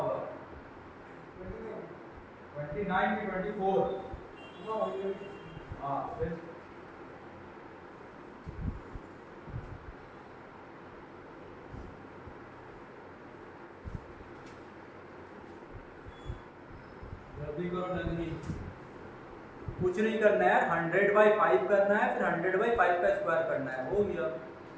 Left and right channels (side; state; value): both; identical; correlation 1.00